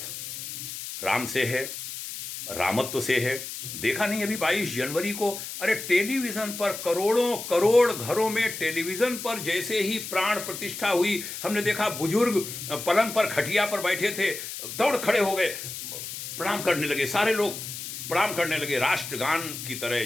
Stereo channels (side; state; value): left; noise; hiss, 8 dB below the sound